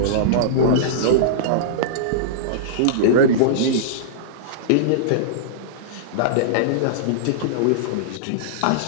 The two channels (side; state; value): both; different; correlation -0.03